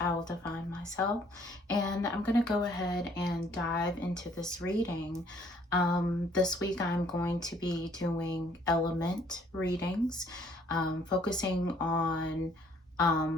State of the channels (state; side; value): normal; both; correlation 0.62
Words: Will Define Myself, and I'm going to go ahead and dive into this reading. This week I'm going to be doing element readings, focusing on